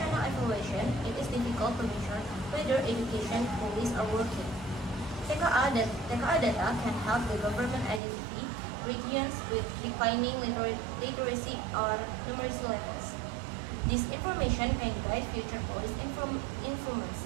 evaluation, it is difficult to measure whether education policies are working. TKA data can help the government identify regions with declining literacy or numeracy levels. This information can guide future policy influence.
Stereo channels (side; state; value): left; drops out; at 8.0 s